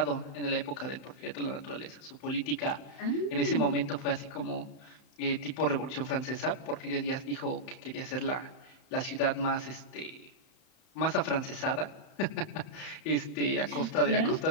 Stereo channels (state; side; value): late; right; 35 ms